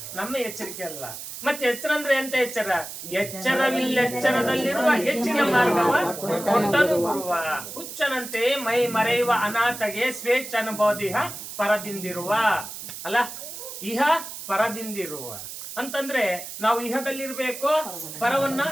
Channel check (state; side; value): noise; right; hiss, 10 dB below the sound